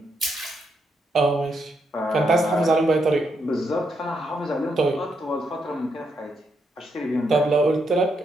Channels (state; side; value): normal; both; correlation 0.79